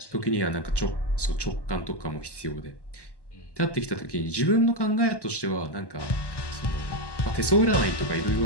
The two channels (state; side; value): late; right; 1.1 ms